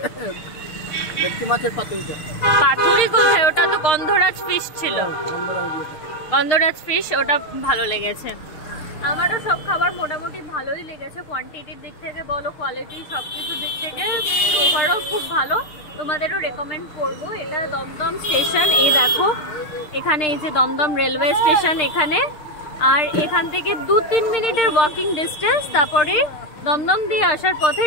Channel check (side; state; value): right; late; 6.6 ms